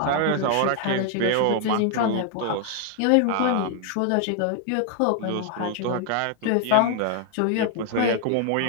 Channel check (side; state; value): both; different; correlation 0.00